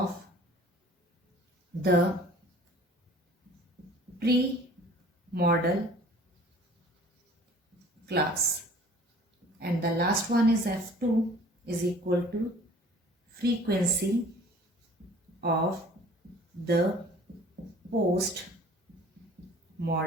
the pre-model class, and the last one is F2 is equal to frequency of the post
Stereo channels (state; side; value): normal; both; correlation 0.50